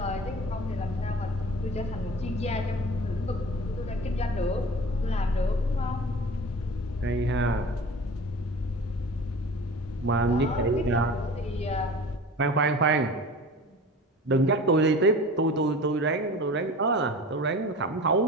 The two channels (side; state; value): both; normal; correlation 0.38